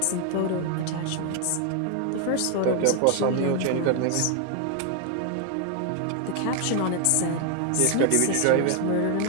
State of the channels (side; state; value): both; different; correlation 0.00